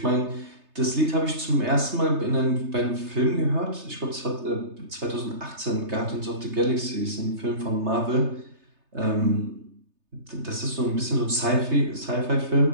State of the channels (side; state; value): left; late; 3.3 ms